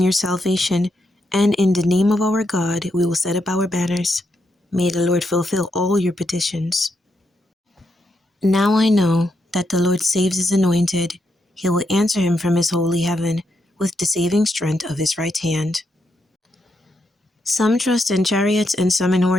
your salvation, and in the name of our God we will set up our banners. May the Lord fulfill all your petitions. Now I know that the Lord saves his anointed. He will answer him from his holy heaven with the saving strength of his right hand. Some trust in chariots and some in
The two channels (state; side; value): normal; both; correlation 0.81